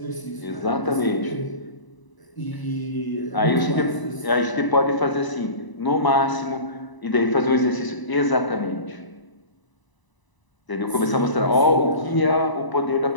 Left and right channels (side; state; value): right; late; 1.0 ms